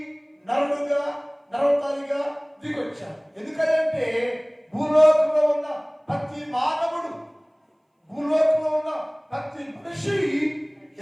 నరవతారిగా దిగొచ్చారు. ఎందుకంటే భూలోకంలో ఉన్న ప్రతి మానవుడు, భూలోకంలో ఉన్న ప్రతి మనిషి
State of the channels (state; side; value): identical; both; correlation 1.00